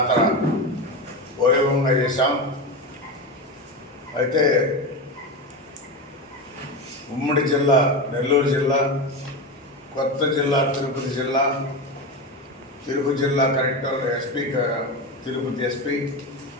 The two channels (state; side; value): normal; both; correlation 0.19